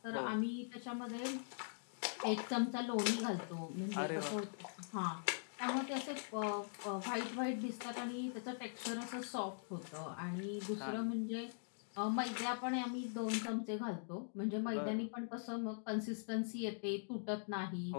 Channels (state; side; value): silent; right; digital silence